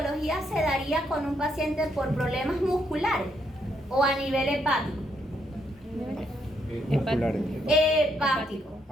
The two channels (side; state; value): both; normal; correlation 0.75